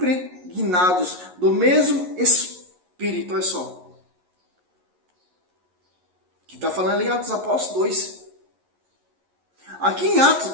do mesmo Espírito. Olha só, que está falando ali em Atos dos Apóstolos 2. Aqui em Atos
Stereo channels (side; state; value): left; late; 11 ms